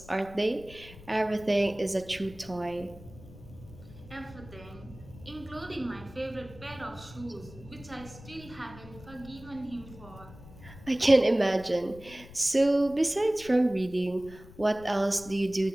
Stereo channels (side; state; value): left; noise; rumble, 18 dB below the sound